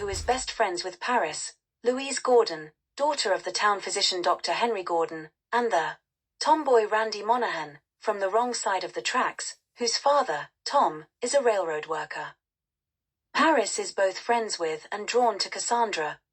is best friends with Paris, Louise Gordon, daughter of the town physician Dr. Henry Gordon, and the tomboy Randy Monahan, from the wrong side of the tracks, whose father, Tom, is a railroad worker. Paris is both friends with and drawn to Cassandra,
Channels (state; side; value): identical; both; correlation 1.00